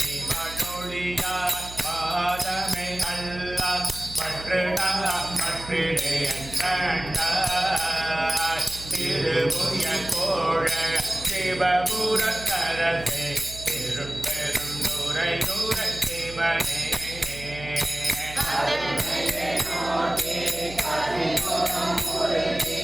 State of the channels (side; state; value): right; noise; hum, 14 dB below the sound